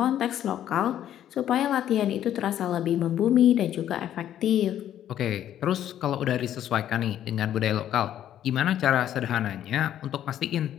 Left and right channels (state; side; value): quieter; right; 11.1 dB